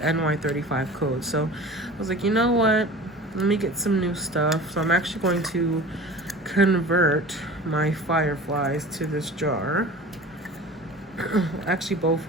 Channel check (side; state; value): both; normal; correlation 0.38